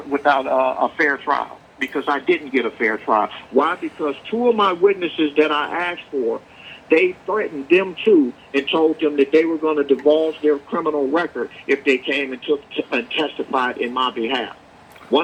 fair trial because I didn't get a fair trial. Why? Because two of my witnesses that I asked for, they threatened them too and told them that they were going to divulge their criminal record if they came and testified in my behalf.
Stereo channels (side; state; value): both; identical; correlation 1.00